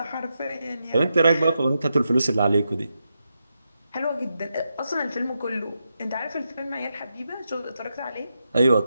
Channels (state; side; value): inverted; both; correlation -0.86